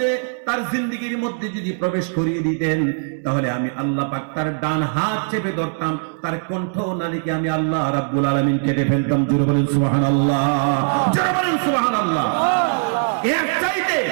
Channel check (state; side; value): silent; left; 64 dB below the other